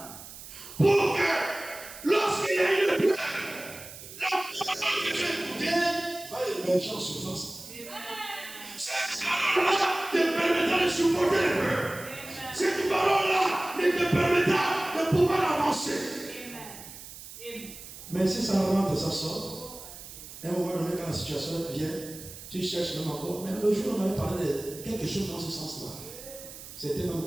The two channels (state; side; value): noise; right; hiss, 14 dB below the sound